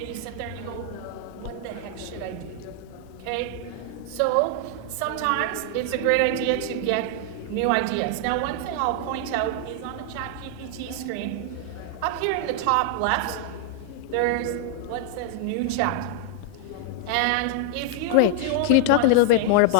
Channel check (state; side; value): different; both; correlation 0.00